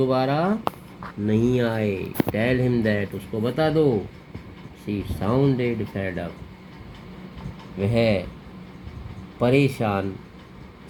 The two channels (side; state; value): both; identical; correlation 1.00